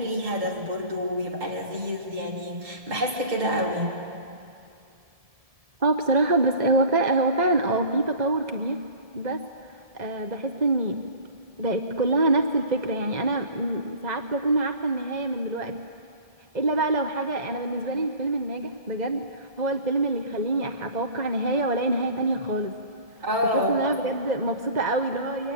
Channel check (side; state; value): left; late; 1.7 ms